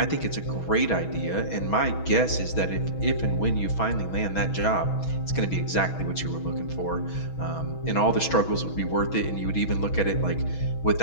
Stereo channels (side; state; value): right; late; 6.2 ms